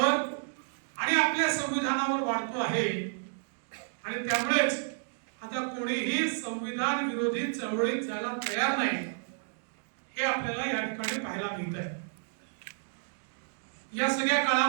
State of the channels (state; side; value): silent; left; digital silence